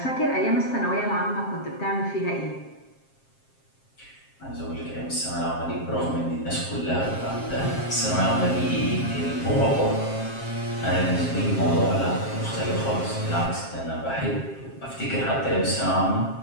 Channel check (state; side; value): late; right; 7.5 ms